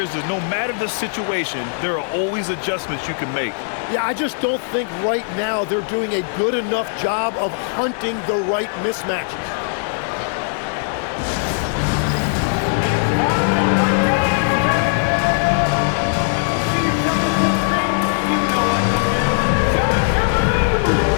is no matter the situation, there are always adjustments you can make. Yeah, I just don't think right now they're doing a good enough job of hunting the right mismatches.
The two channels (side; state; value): right; silent; 57 dB below the other